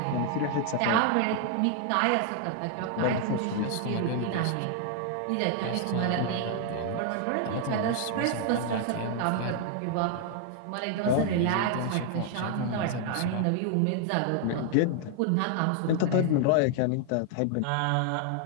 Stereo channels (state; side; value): different; both; correlation 0.00